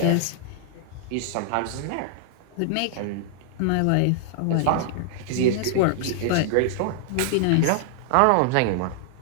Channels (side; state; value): both; different; correlation -0.01